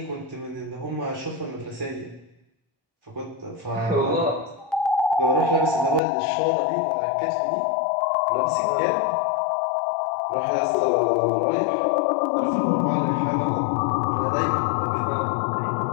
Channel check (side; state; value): right; drops out; at 6.0 s